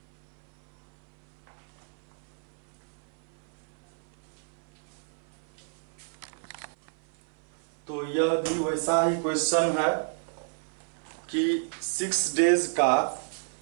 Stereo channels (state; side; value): silent; left; 56 dB below the other